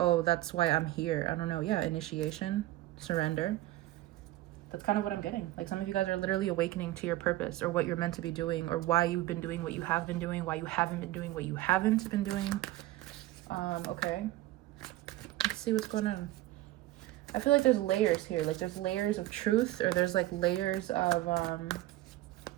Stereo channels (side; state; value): left; quieter; 16.2 dB